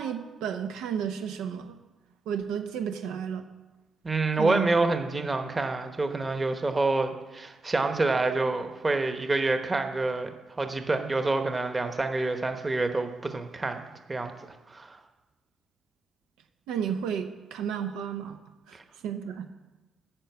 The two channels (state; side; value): quieter; left; 3.3 dB